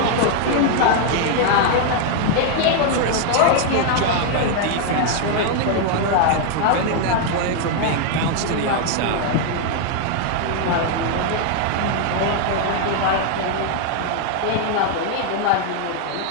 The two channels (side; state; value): both; different; correlation 0.00